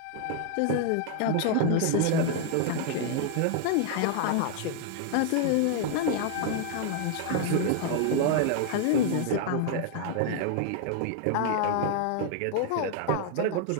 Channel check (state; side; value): different; both; correlation 0.00